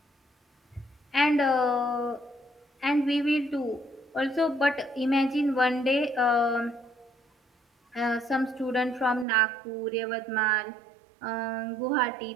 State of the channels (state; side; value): drops out; left; at 9.2 s